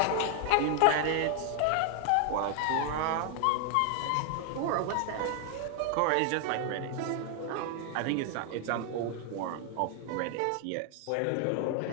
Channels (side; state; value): both; different; correlation 0.00